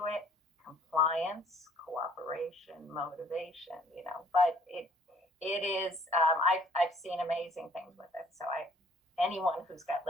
it. Compliance, cooperation, motivation, but it is, I've seen amazing things with it. So anyone who's got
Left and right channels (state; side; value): normal; both; correlation 0.59